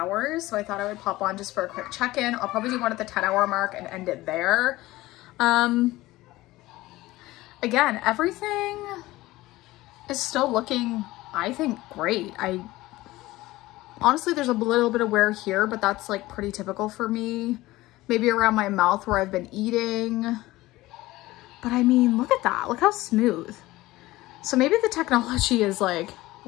So I thought I would pop on just for a quick check-in. I'll probably do one at the 10-hour mark and end it there. Again, everything is still looking, I think, great. Honestly, there's a little bit of wear here, but that's like pretty typical for me. Maybe around my mouth where I've been eating. But I mean, look at that. Look how smooth. So maybe the technology is like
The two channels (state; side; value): quieter; right; 18.2 dB